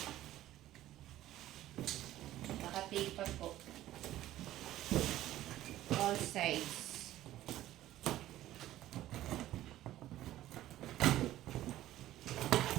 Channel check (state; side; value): quieter; left; 14.2 dB